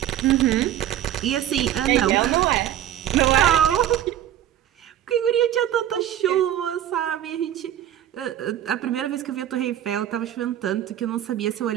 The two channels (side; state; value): left; quieter; 11.6 dB